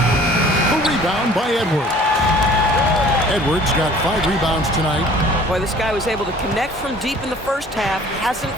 rebound by Edwards. Edwards got 5 rebounds tonight. Boy, this guy was able to connect from deep in the first half. Hasn't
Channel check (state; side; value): normal; both; correlation 0.51